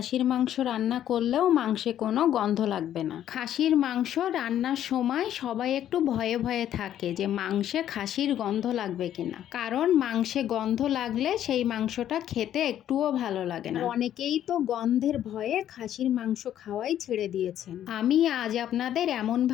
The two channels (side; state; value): right; quieter; 11.1 dB